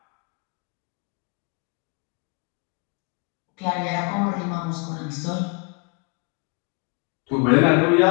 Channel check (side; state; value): right; quieter; 33.7 dB